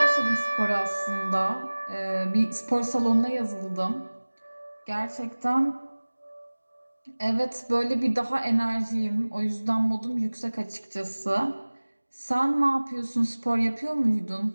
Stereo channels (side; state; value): both; inverted; correlation -1.00